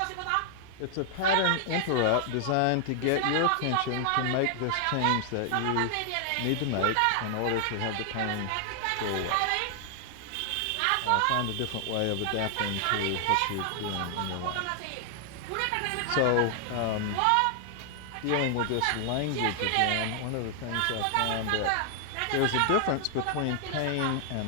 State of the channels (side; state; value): both; different; correlation 0.00